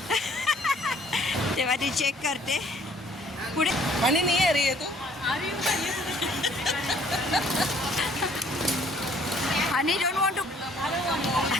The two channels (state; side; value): normal; both; correlation 0.60